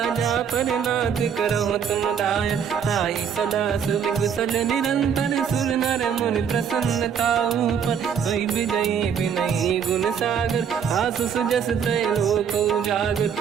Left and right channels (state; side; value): quieter; left; 7.5 dB